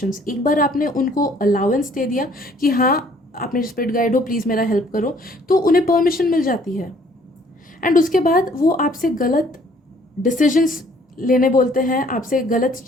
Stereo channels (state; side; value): normal; both; correlation 0.60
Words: एक बार आपने उनको अलाउंस दे दिया कि हाँ आप मेरे स्पिरिट गाइड हो, प्लीज़ मेरा हेल्प करो, तो उन्हें परमिशन मिल जाती है, एंड उसके बाद वो आपसे गलत डिसीजंस लेने बोलते हैं, आपसे गलत